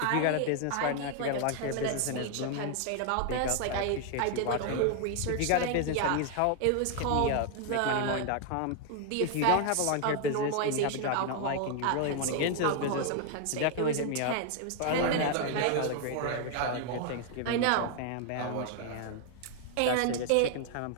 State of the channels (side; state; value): both; different; correlation 0.00